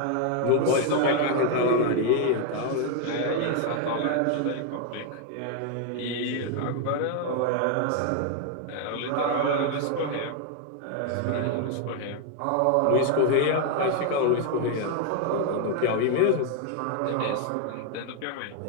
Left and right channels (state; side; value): different; both; correlation 0.01